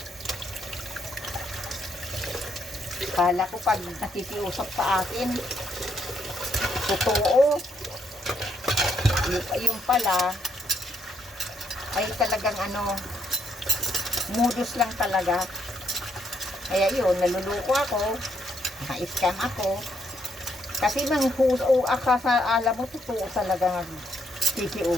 Kala ko pag nakikiusap sa akin, totoo. Yung pala, ay talagang modus lang talaga. Kaya yun, naluluko ako, na-scam ako. Kasi alam mo, totoo talaga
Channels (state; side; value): normal; both; correlation 0.75